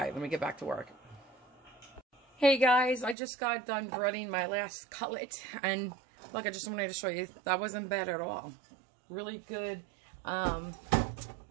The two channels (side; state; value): left; drops out; at 3.2 s